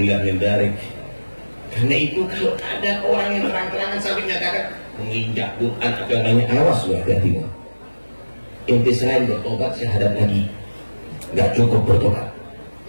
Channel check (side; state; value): both; inverted; correlation -1.00